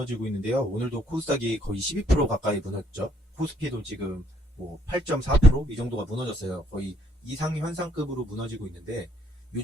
있는데요. 오늘도 코스닥이 거의 12% 가까이 무너졌죠. 코스피도 지금 뭐 8.4%? 이 정도가 무너졌어요. 거의 이상현상급으로 무너지고 있는데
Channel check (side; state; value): both; normal; correlation 0.69